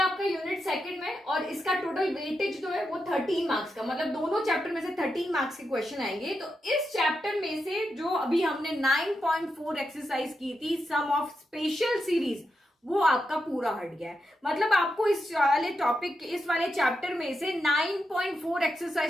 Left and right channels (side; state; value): both; normal; correlation 0.86